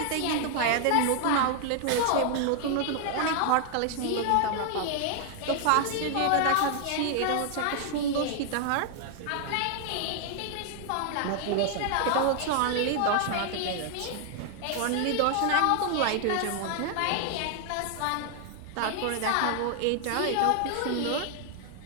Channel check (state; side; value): different; both; correlation 0.00